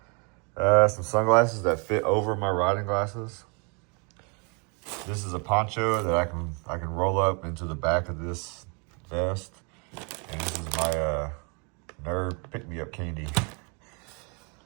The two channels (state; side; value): quieter; left; 34.3 dB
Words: Some sunglasses that fit over my riding glasses. This is a poncho that I can roll up into the back of this vest. And this is my nerd pick-me-up candy.